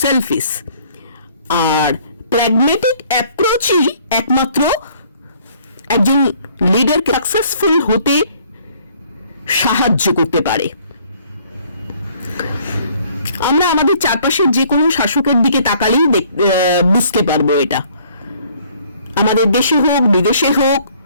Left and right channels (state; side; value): inverted; both; correlation -0.60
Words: সেলফিশ। আর প্র্যাগম্যাটিক অ্যাপ্রোচই একমাত্র একজন লিডারকে সাকসেসফুল হতে সাহায্য করতে পারে। আমরা আমাদের চারপাশের যে কোনো শাসকের দিকে তাকালেই বুঝতে পারবো এটা। আমাদের দেশে হোক, বিদেশে হোক,